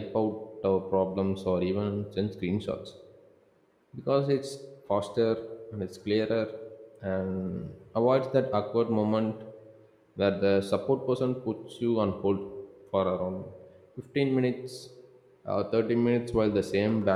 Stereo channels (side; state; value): both; identical; correlation 1.00